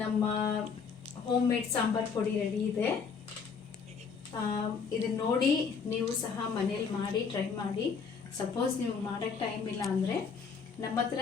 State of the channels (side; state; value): right; quieter; 5.7 dB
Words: ನಮ್ಮ ಹೋಮ್ ಮೇಡ್ ಸಾಂಬಾರ್ ಪುಡಿ ರೆಡಿ ಇದೆ. ಇದನ್ನ ನೋಡಿ ನೀವು ಸಹ ಮನೇಲಿ ಮಾಡಿ ಟ್ರೈ ಮಾಡಿ. ಸಪೋಸ್ ನೀವು ಮಾಡೋಕ್ಕೆ ಟೈಮ್ ಇಲ್ಲ ಅಂದರೆ ನಮ್ಮ ಹತ್ರ